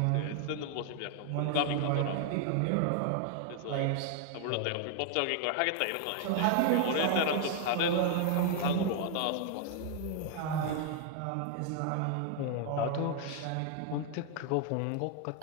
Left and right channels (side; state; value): both; different; correlation 0.00